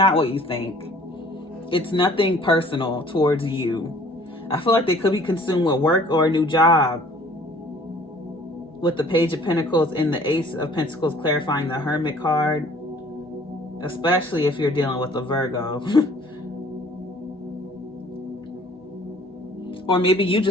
what you think. It's nothing personal towards you. I feel like they could be consumed with work or a new job. With the Page of Pentacles and the Ace of Pentacles clarifying the Hermit card. Especially if you're dealing with a Virgo. Or maybe you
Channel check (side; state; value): both; normal; correlation 0.54